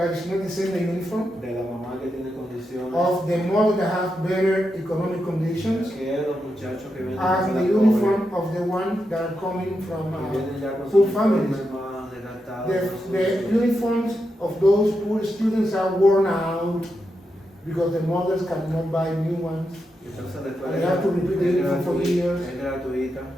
it's not the same the uniform de la mamá que tiene condiciones, of the mother that have better economic conditions que los muchachos que vienen as de the la uniform of the one that are coming from que vienen ya con poor sus families. uniformes más desgastados. The uniforms of those poor students are worn out because the mothers cannot buy new ones. Entonces la escuela And they have to repeat the uniform for years. es gratuita,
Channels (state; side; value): normal; both; correlation 0.86